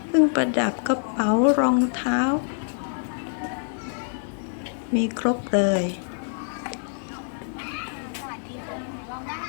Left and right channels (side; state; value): right; silent; digital silence